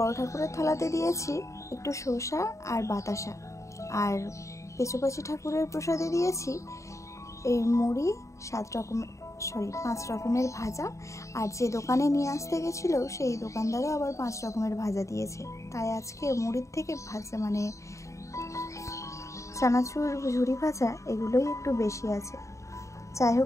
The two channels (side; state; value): right; late; 0.15 ms